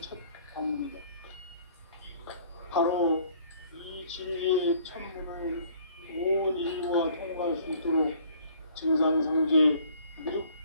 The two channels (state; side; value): inverted; both; correlation -0.57